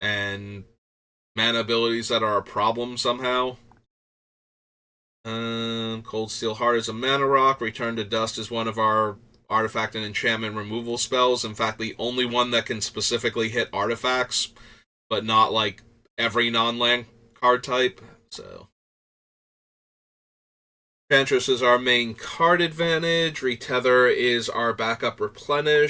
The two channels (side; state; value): both; identical; correlation 1.00